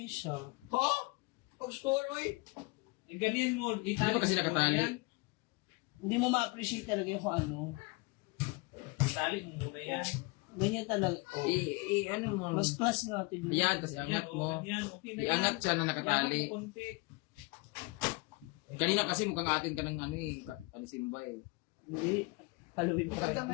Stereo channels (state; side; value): quieter; right; 26.4 dB